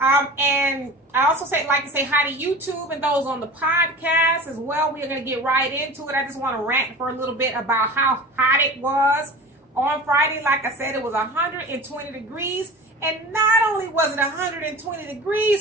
I also like to say hi to YouTube and those on the podcast as well. We are going to get right into it. I just want to rant for a little bit about how hot it was on Friday. Like I said, it was 120 degrees. And not only was it 120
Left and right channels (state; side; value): normal; both; correlation 0.36